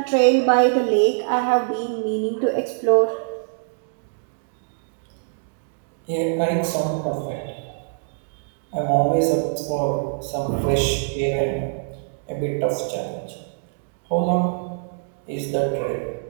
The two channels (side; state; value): left; silent; digital silence